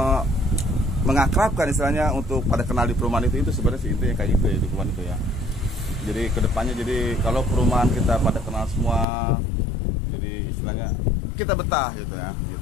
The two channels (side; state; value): right; drops out; at 9.1 s